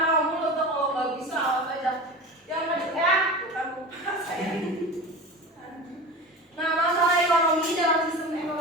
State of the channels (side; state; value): both; normal; correlation 0.31